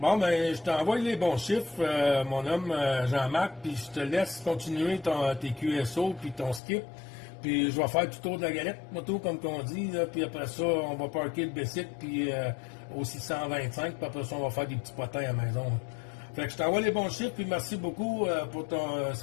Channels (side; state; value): right; drops out; at 6.6 s